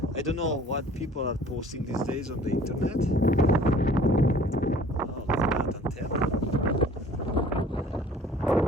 I don't know what people are posting these days on the internet. Oh, look at that antenna.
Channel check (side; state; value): both; normal; correlation 0.51